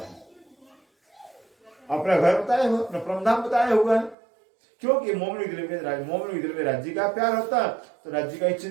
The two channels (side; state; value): left; drops out; at 4.2 s